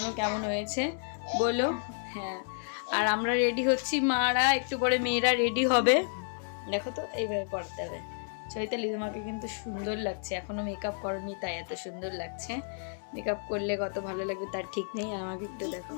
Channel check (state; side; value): silent; right; 57 dB below the other